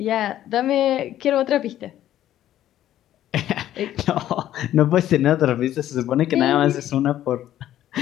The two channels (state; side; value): quieter; right; 12.4 dB